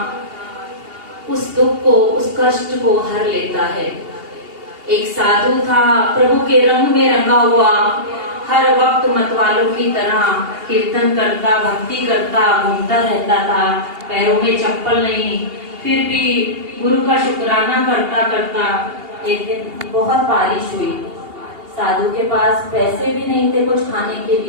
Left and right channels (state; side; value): late; left; 2.8 ms